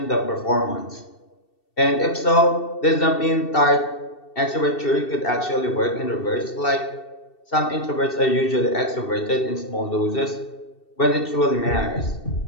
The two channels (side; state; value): right; late; 2.7 ms